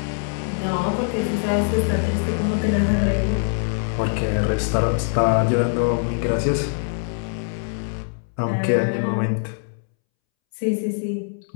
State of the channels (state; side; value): silent; right; 64 dB below the other